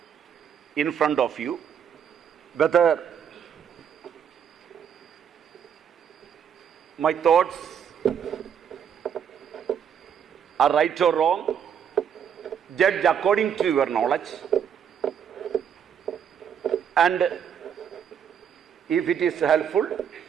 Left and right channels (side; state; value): left; quieter; 8.2 dB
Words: in front of you, whether my thoughts are right or wrong, judge according to your knowledge, and if it is helpful,